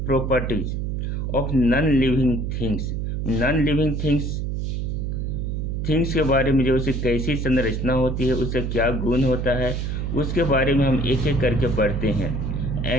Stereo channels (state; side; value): noise; right; hum, 2 dB below the sound